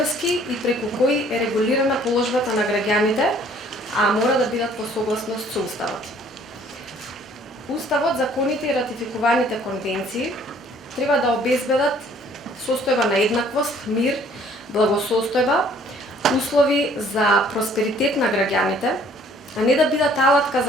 и преку кои е регулирана положбата на граѓаните, а мора да бидат по согласност со Уставот. Уставот, законите и ратификуваните конвенции треба да обезбедат состојба на еднаквост, мир, благосостојба, услови за просперитет на граѓаните, а не да бидат алатка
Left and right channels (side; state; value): both; normal; correlation 0.58